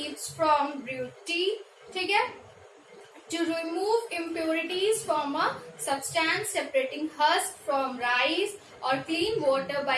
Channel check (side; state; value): both; identical; correlation 1.00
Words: from brewed tea. ठीक है, to remove impurities from a substance, separating husk from rice और clean water